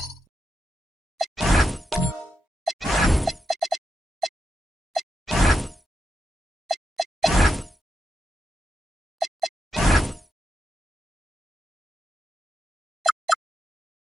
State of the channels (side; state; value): both; normal; correlation 0.87